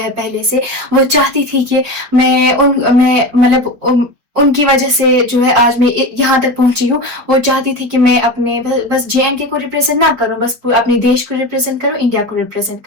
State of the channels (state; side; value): late; left; 4.4 ms